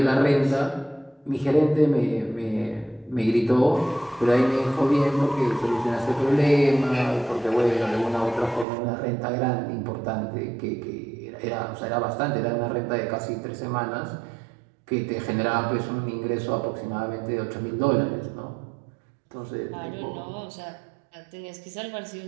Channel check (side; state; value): left; drops out; at 8.7 s